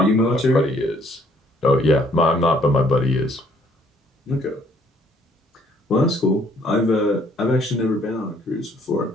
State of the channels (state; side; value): normal; both; correlation 0.64